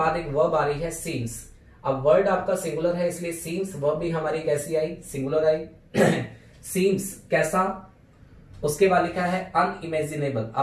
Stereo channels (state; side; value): identical; both; correlation 1.00